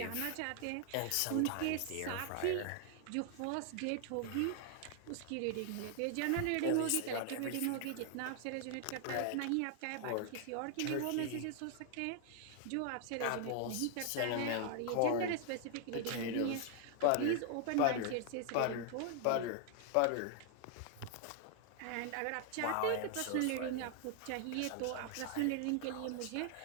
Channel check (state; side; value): different; both; correlation 0.00